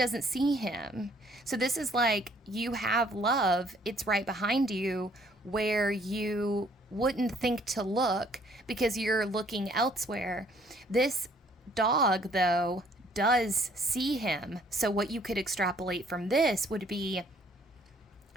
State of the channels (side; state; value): both; normal; correlation 0.62